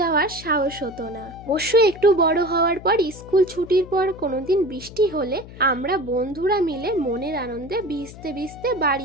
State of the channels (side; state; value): left; noise; hum, 16 dB below the sound